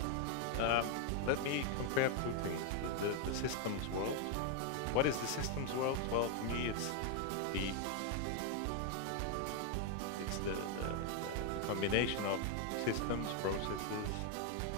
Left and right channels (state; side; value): different; both; correlation 0.01